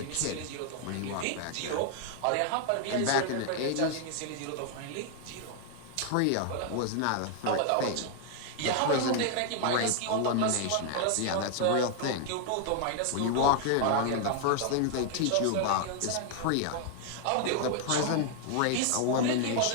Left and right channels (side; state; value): both; different; correlation 0.00